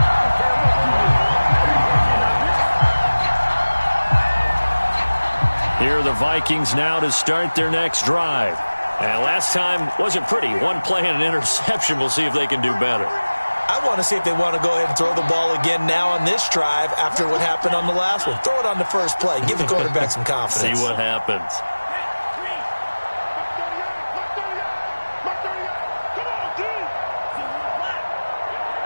Here are the Vikings now to start their next drive. And last time wasn't pretty. One play and an interception. We'll see if they can do better. I want to see if they want to go ahead and throw the ball again now on this drive after what happened on the last one. Throw it on the first play. Give the quarterback some confidence. See what happens.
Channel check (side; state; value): both; inverted; correlation -1.00